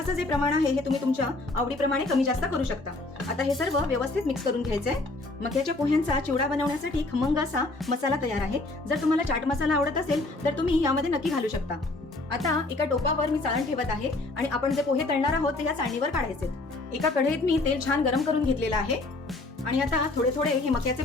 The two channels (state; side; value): quieter; right; 3.1 dB